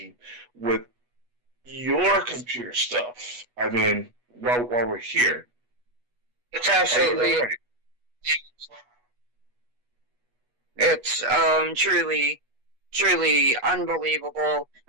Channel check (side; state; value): left; late; 8.2 ms